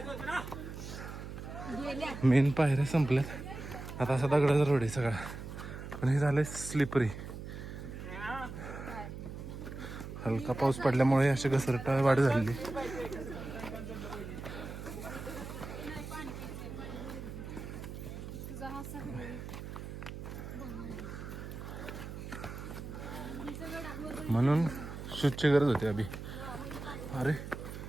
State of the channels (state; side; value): noise; right; hum, 9 dB below the sound